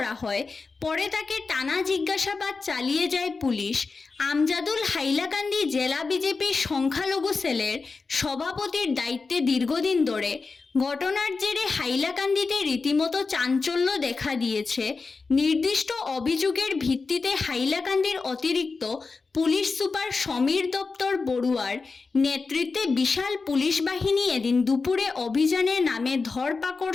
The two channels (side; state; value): right; quieter; 4.3 dB